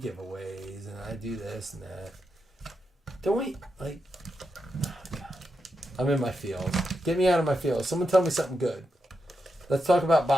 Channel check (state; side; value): normal; both; correlation 0.86